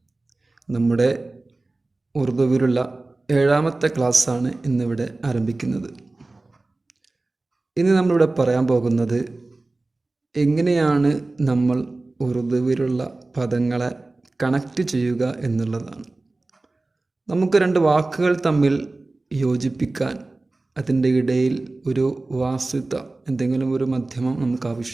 നമ്മുടെ ഉറുദുവിലുള്ള 7ാമത്തെ ക്ലാസ്സാണ് ഇന്നിവിടെ ആരംഭിക്കുന്നത്. ഇന്ന് നമ്മളിവിടെ പറയാൻ പോകുന്നത് എങ്ങനെയാണ് നമ്മൾ ഉറുദുവിലുള്ള പദങ്ങളെ കണക്റ്റ് ചെയ്യുക എന്നുള്ളതാണ്. നമുക്ക് രണ്ട് വാക്കുകൾ തമ്മിൽ യോജിപ്പിക്കാൻ അതിൻ്റെ ഇടയിൽ ഒരു വാസ്തുത, എന്തെങ്കിലും ഒരു മധ്യമം നമുക്ക്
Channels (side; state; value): left; quieter; 3.1 dB